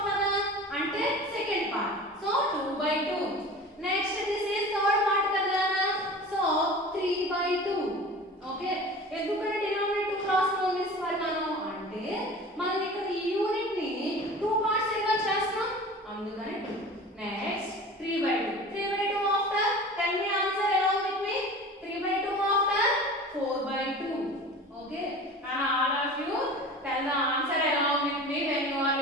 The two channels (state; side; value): normal; both; correlation 0.38